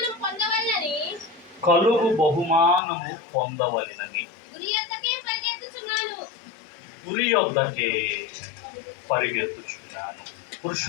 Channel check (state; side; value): drops out; right; at 2.8 s